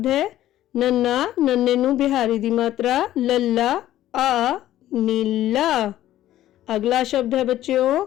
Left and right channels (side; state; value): right; quieter; 13.5 dB